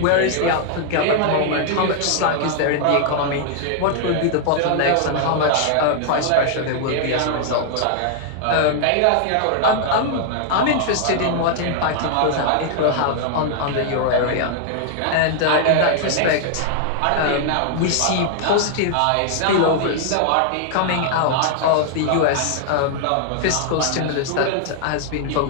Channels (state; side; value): different; both; correlation 0.00